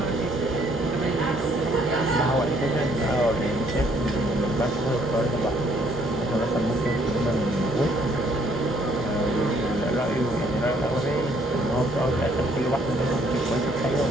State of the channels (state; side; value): normal; both; correlation 0.66